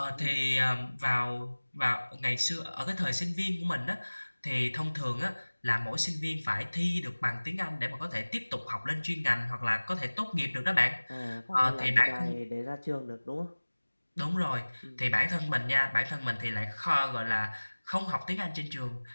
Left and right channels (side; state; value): both; inverted; correlation -1.00